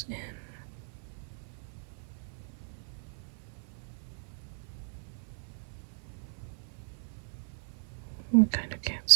in. We kind of can't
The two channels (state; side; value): silent; left; 54 dB below the other